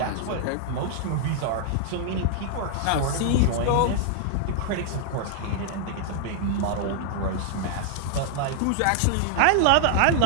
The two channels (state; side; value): different; both; correlation -0.01